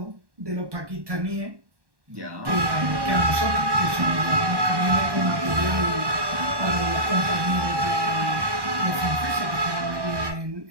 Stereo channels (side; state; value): left; late; 1.1 ms